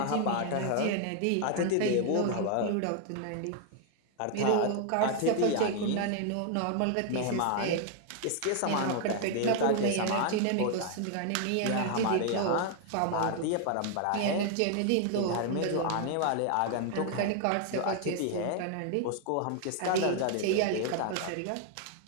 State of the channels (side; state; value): both; different; correlation 0.00